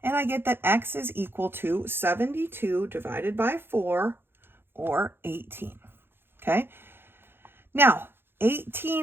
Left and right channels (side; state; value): left; late; 0.10 ms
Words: And I get that x is equal to 72 divided by 4, or 18. Okay? Now,